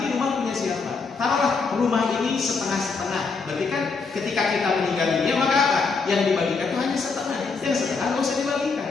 rumah punya siapa. Taruhlah rumah ini setengah-setengah. Berarti kan ketika kita meninggal dunia maka apa? Yang dibagikan itu hanya setengah. Yang setengah nggak usah dibagikan.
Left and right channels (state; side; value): quieter; right; 4.6 dB